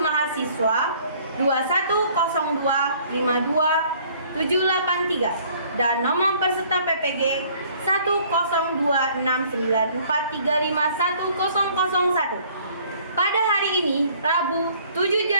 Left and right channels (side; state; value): both; inverted; correlation -0.57